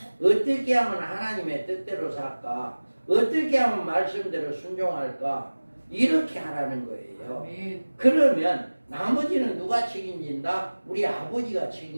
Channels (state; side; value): inverted; both; correlation -1.00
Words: 어떻게 하면 하나님의 뜻대로 살까? 어떻게 하면 말씀대로 순종할까? 이렇게 하라는 거예요. 아멘. 그러면 나머지는 누가 책임진다? 우리 아버지가